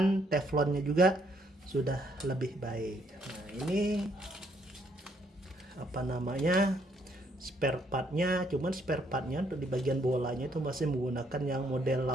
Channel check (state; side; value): normal; both; correlation 0.70